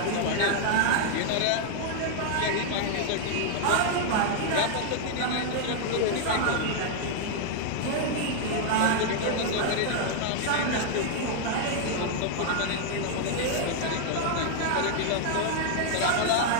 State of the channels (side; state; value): both; different; correlation 0.00